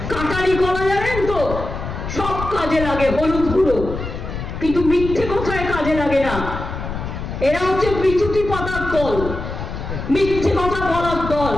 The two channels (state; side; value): noise; left; rumble, 7 dB below the sound